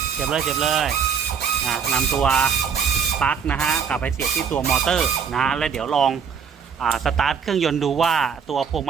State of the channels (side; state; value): left; quieter; 6.8 dB